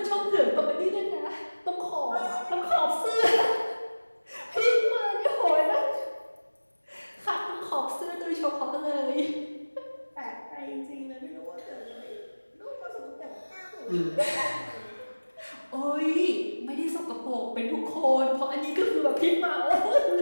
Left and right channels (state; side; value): inverted; both; correlation -1.00